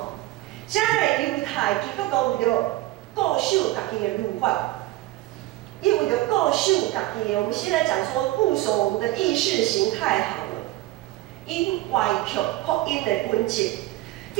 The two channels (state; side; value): quieter; left; 17.2 dB